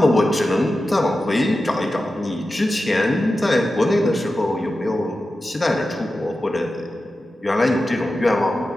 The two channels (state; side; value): normal; both; correlation 0.92